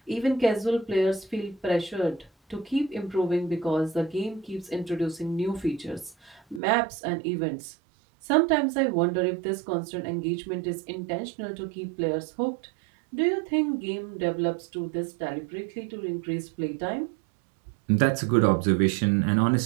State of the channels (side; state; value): left; drops out; at 6.6 s